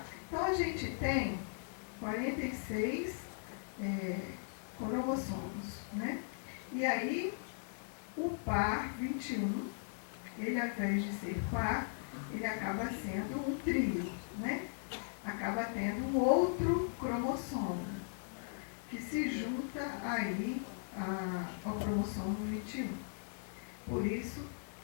Então, a gente tem 46 cromossomos, né? E aí, o par 21, ele, ao invés de ser par, ele acaba sendo um trio, né? Acaba tendo um outro cromossomo, que se junta aí ao cromossomo 21. Por isso,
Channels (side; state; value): right; silent; 52 dB below the other